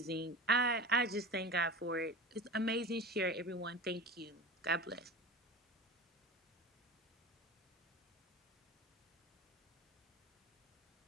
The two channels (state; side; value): normal; both; correlation 0.32